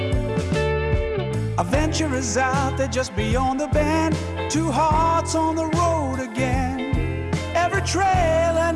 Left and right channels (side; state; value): both; identical; correlation 1.00